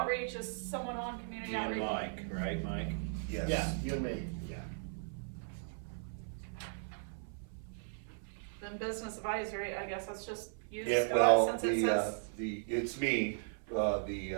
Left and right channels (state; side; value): silent; left; 53 dB below the other